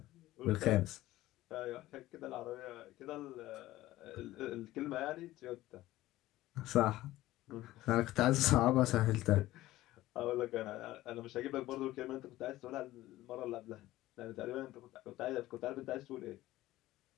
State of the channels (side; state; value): right; quieter; 16.2 dB